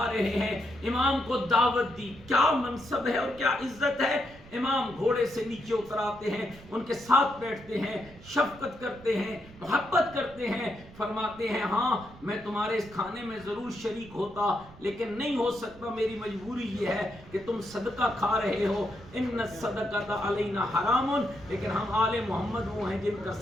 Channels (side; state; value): right; noise; rumble, 20 dB below the sound